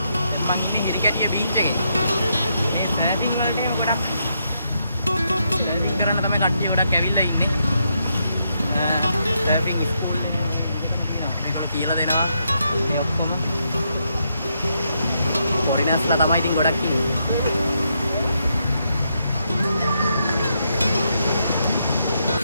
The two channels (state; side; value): inverted; both; correlation -0.79